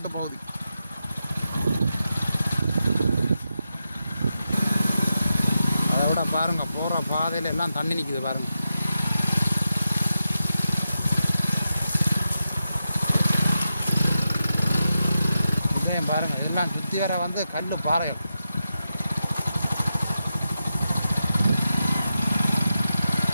பகுதி. அதை விட பாருங்கள் போகிற பாதையில் எல்லாம் தண்ணி நிற்குது பாருங்கள். பாருங்கள் எல்லாம் சுற்றி வர வந்து கல் பாறைகள்.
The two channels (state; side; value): inverted; both; correlation -0.89